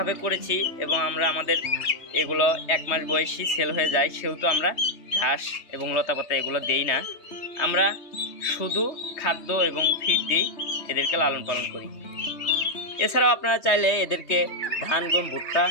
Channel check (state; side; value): late; right; 3.2 ms